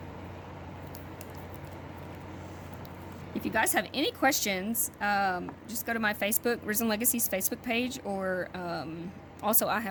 If you guys have any questions, just go to my Facebook, Risen Legacy's Facebook page, or also I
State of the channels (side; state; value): both; identical; correlation 1.00